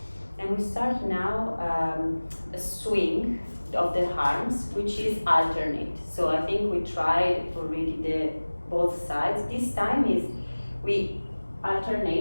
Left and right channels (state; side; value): inverted; both; correlation -1.00